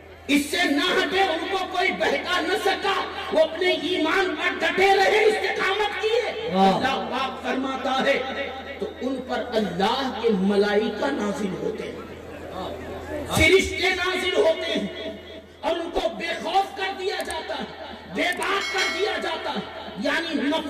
اس سے نہ ہٹے، ان کو کوئی بہکا نہ سکا، وہ اپنے ایمان پر ڈٹے رہے، استقامت کیے۔ اللہ پاک فرماتا ہے تو ان پر اللہ کے ملائکہ نازل ہوتے ہیں، فرشتے نازل ہوتے ہیں، اور ان کو بے خوف کر دیا جاتا ہے، بے باک کر دیا جاتا ہے۔ یعنی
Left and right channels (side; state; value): both; identical; correlation 1.00